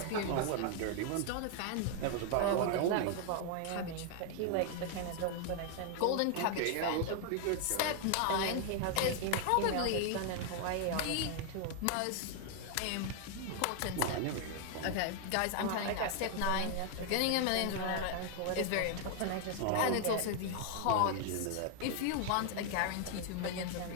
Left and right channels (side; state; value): both; different; correlation 0.00